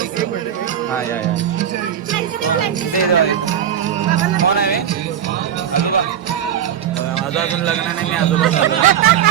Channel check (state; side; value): quieter; left; 9.6 dB